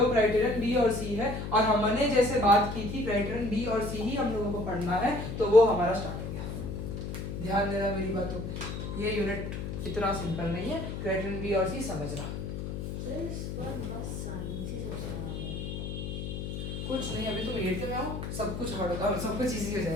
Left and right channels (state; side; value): noise; left; hum, 5 dB below the sound